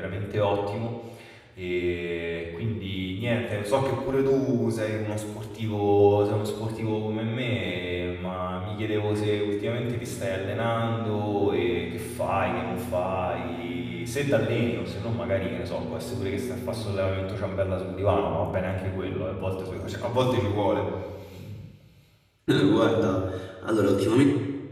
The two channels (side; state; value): both; identical; correlation 1.00